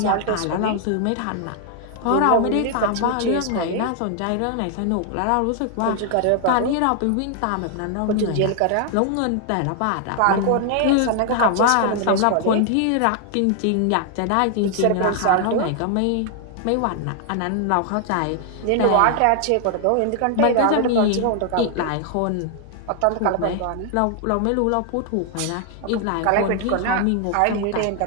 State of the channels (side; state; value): both; different; correlation 0.00